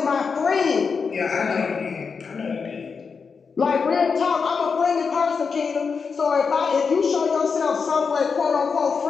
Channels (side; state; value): right; quieter; 5.4 dB